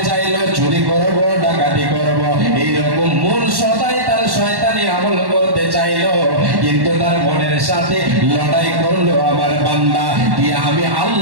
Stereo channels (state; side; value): late; left; 1.1 ms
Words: চাইলো চুরি করবো, ডাকাতি করবো, এইরকম মন সদাই তার শয়তানি আমল করতে চাইলো। কিন্তু তার মনের সাথে লড়াই করলো আমার বান্দা, দিয়ে আমি